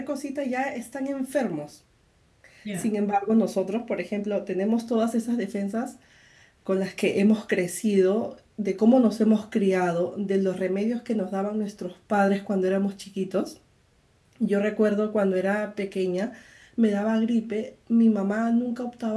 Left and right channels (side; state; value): both; identical; correlation 1.00